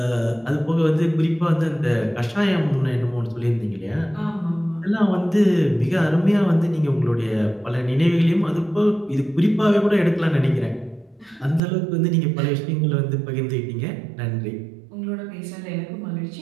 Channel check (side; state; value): left; drops out; at 11.6 s